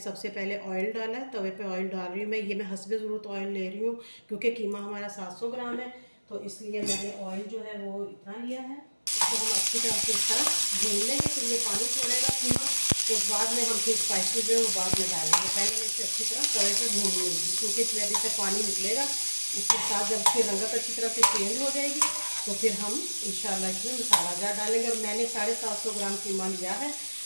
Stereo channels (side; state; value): both; inverted; correlation -1.00